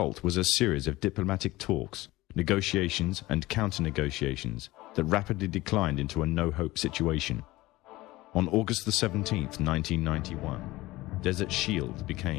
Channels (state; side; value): quieter; right; 19.0 dB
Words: was a series of diplomatic talks, negotiations and counter-negotiations that rapidly declined into a no-hope situation. On August the 17th, 1991, Desert Shield